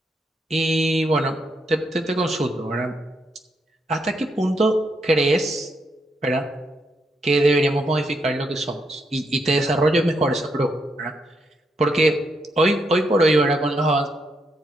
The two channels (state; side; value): normal; both; correlation 0.79